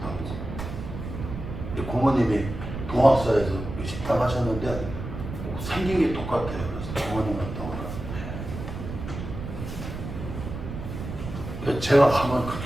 오고 고모님이 동학사에서 식당 하셨는데 생긴 게 똑같아요. 그래서 고모님 갔다 오라. 제가 가면 그렇게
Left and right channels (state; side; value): noise; right; rumble, 7 dB below the sound